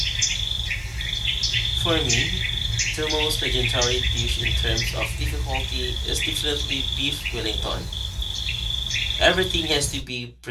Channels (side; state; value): both; identical; correlation 1.00